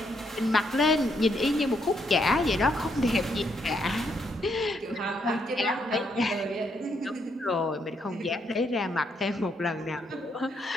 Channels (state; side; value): normal; both; correlation 0.75